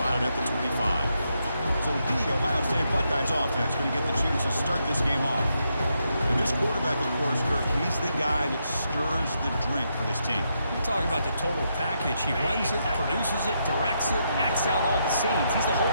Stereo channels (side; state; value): both; inverted; correlation -0.80